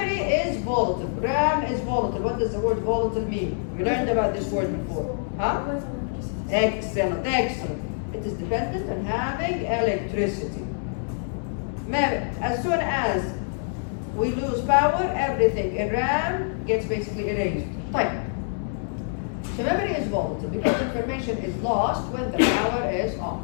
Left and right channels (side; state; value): right; silent; digital silence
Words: is volatile. RAM is volatile. What does the word volatile mean? We learned about this word before. Huh? Excellent. It is dependent on having electricity. As soon as we lose power, everything in RAM gets basically erased. Type. So memory is volatile because information is lost when the power is off.